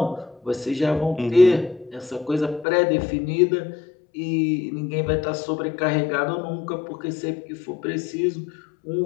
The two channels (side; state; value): right; drops out; at 2.7 s